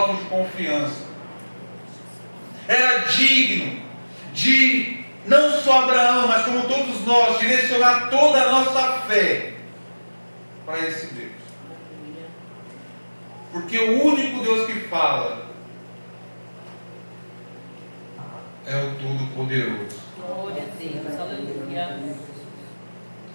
de confiança. Era digno de, não só Abraão, mas como todos nós, direcionar toda a nossa fé para esse Deus. Porque o único Deus que fala é o Todo-Poderoso. Glória a Deus, aleluia.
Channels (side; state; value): both; inverted; correlation -1.00